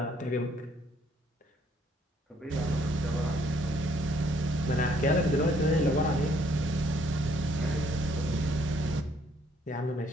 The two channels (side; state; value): both; normal; correlation 0.66